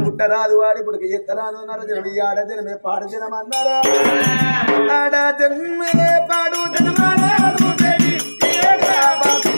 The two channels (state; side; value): inverted; both; correlation -1.00